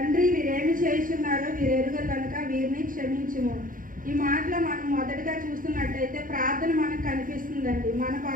వీరేమి చేస్తున్నారో వీరు ఎరుగరు కనుక వీరిని క్షమించుము. ఈ మాటలో మనం మొదటిగా చూస్తున్నట్టయితే ప్రార్థన మనకు కనిపిస్తుందండి. మన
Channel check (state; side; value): late; left; 0.40 ms